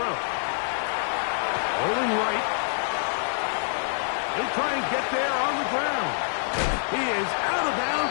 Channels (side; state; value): right; silent; digital silence